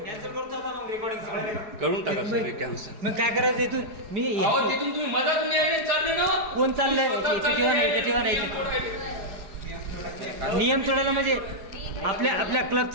करून टाका सगळे कॅन्सल. मग काय करायचं इथून मी तिथून तुम्ही मधातून यायले चालले ना. कोण चाललंय ठेवा नाही नियम तोडायला म्हणजे आपल्या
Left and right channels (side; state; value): left; late; 4.8 ms